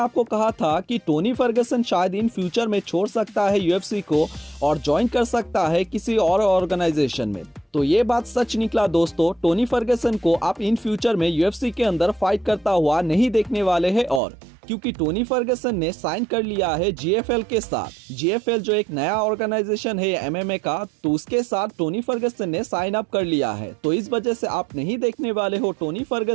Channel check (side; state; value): left; drops out; at 14.2 s